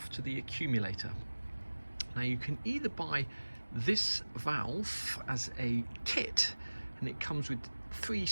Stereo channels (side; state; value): both; inverted; correlation -1.00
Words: to the accumulator. Now you can either buy this valve as a kit, and it comes with 3